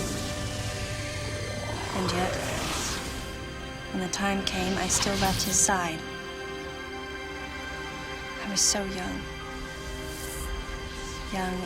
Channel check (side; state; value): both; identical; correlation 1.00